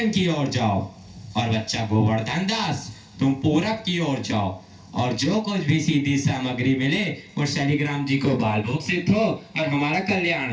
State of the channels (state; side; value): identical; both; correlation 1.00